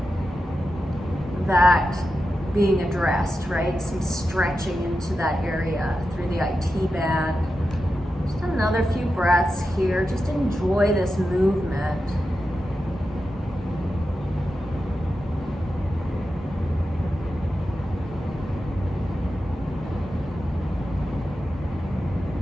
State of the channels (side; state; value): both; normal; correlation 0.90